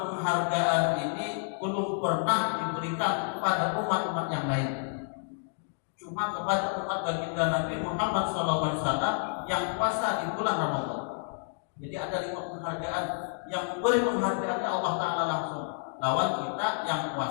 ini belum pernah diberikan kepada umat-umat yang lain, cuma kepada umat baginda Nabi Muhammad SAW yang puasa di bulan Ramadan. Jadi ada 5 penghargaan, yang memberi penghargaannya Allah Ta'ala langsung, lawan kita yang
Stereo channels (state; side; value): silent; right; digital silence